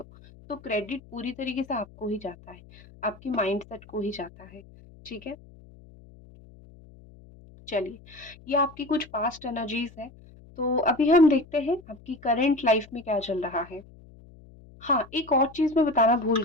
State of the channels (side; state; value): left; noise; hum, 22 dB below the sound